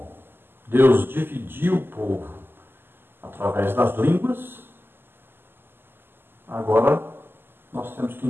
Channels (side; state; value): left; late; 0.10 ms